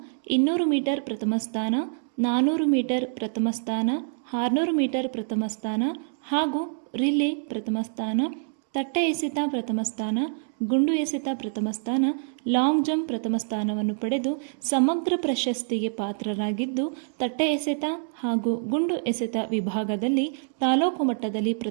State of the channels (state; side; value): silent; left; digital silence